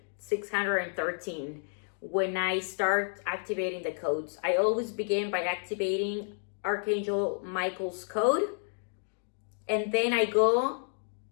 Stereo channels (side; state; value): right; silent; digital silence